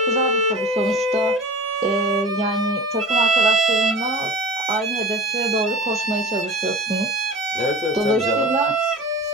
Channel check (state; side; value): normal; both; correlation 0.36